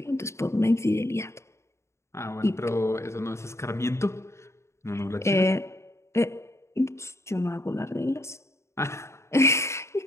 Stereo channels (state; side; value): late; right; 0.13 ms